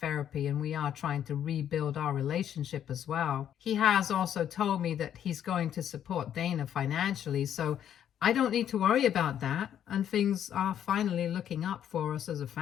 and we are trying to rebuild our relationship as well. He has also told me that he's going to support Dana financially, so I don't need to worry about that, and things are finally looking up for us as a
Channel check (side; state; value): right; quieter; 9.9 dB